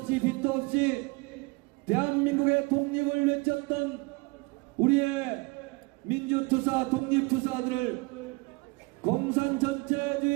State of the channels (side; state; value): left; quieter; 26.5 dB